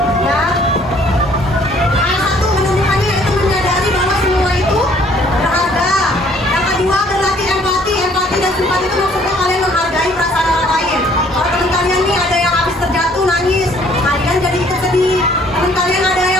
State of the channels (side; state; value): both; normal; correlation 0.60